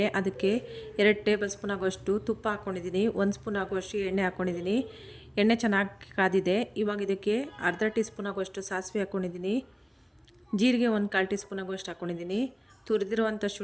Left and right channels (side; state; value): both; identical; correlation 1.00